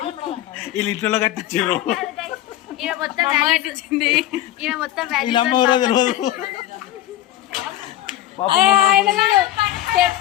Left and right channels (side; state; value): right; quieter; 13.7 dB